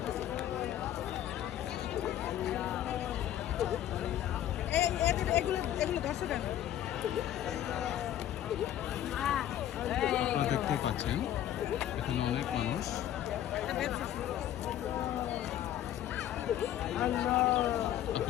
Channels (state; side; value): quieter; right; 11.7 dB